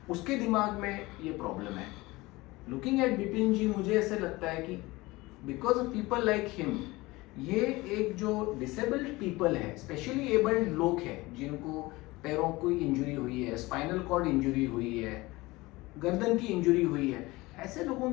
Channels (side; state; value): right; quieter; 21.2 dB